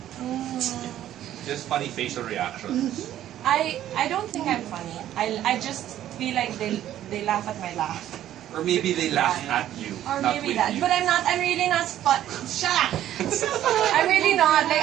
Just funny facial reactions. I don't think I'm funny. I just feel like they laugh at my laugh. Or maybe they laugh at you, Or not maybe with that. you. But I'm really not fun. Shut up! I'm really not. Like,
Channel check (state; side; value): quieter; left; 12.2 dB